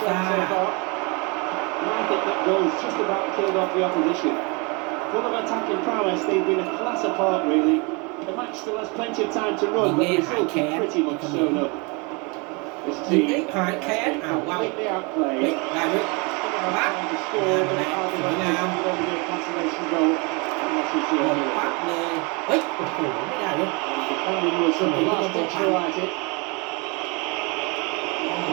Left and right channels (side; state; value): left; quieter; 30.1 dB